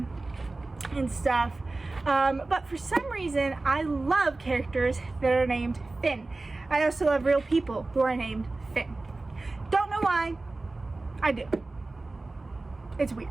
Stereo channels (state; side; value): quieter; left; 3.2 dB